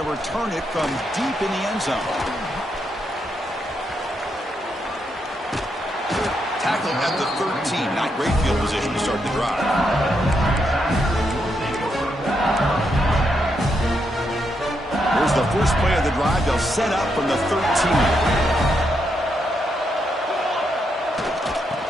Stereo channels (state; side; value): normal; both; correlation 0.80